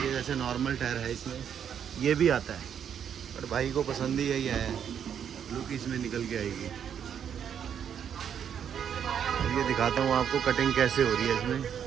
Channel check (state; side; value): quieter; left; 8.5 dB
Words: जैसे नॉर्मल टायर है इसमें ये भी आता है, पर भाई को पसंद ही यही है, लुक इसमें निकल के आएगी। अब ये दिखाता हूँ आपको कटिंग कैसे हो रही है इसमें।